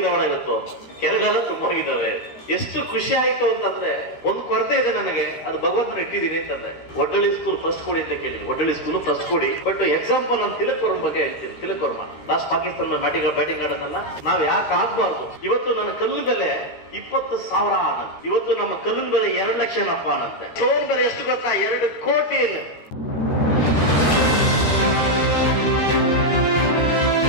ಇವತ್ತು, ಕೆರೆಗಳೆಲ್ಲ ತುಂಬೋಗಿದ್ದಾವೆ. ಎಷ್ಟು ಖುಷಿ ಆಯ್ತು ಅಂತಂದ್ರೆ, ಒಂದು ಕೊರತೆ ಇದೆ ನನಗೆ, ಅದು ಭಗವಂತನ ಇಟ್ಟಿದ್ದೀನಿ ಅಂತಂದ್ರೆ. ಒಡ್ಡಳ್ಳಿ ಸ್ಕೂಲ್ ಫಸ್ಟ್ ಕೊಡಿ ಅಂತ ಕೇಳಿದೀನಿ, ಒಡ್ಡಳ್ಳಿ ಸ್ಕೂಲ್ ಫಸ್ಟ್ ಕೊಡಿ. ಬಟ್ ಎಕ್ಸಾಂಪಲ್ ನಾನು ತಿಲಕ್ ವರ್ಮ ಬಗ್ಗೆ ಹೇಳ್ತೀನಿ. ತಿಲಕ್ ವರ್ಮ ಲಾಸ್ಟ್ ಪಾಕಿಸ್ತಾನ ಬ್ಯಾಟಿಂಗ್ ಆಡೋದನ್ನ ನಾವ್ ಯಾಕೆ ಆಗ್ಬಾರ್ದು? ಇವತ್ತು ನನ್ನ ಕಲ್ಲಿನ ಬೆಲೆ 20,000 ಅನ್ನಂತೆ, ಇವತ್ತು ನಮ್ಮ ಕಲ್ಲಿನ ಬೆಲೆ 2 ಲಕ್ಷ ಏನಪ್ಪ ಅನ್ನಂತೆ. ಸ್ಟೋನ್ ಬೆಲೆ ಎಷ್ಟು ಗೊತ್ತಾ? 2 ಕೋಟಿ.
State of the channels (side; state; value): right; late; 13 ms